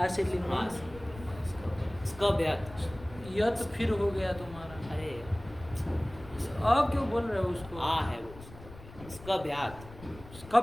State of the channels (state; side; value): noise; left; rumble, 17 dB below the sound